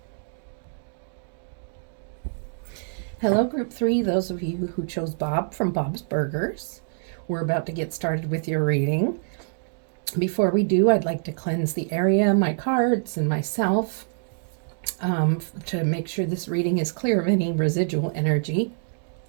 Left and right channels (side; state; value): left; silent; digital silence